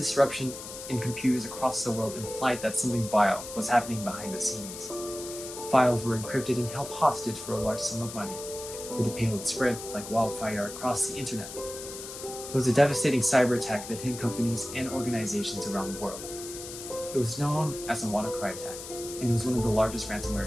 in computers across the world implied that something vile was happening behind the scenes. Files were encrypted and held hostage for a large sum of money, where the payload spread like wildfire across the internet. It was a devastating cyber attack that hit companies and organizations around the world. It was known as the WannaCry attack, and it was one of the largest ransomware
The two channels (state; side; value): noise; left; hiss, 11 dB below the sound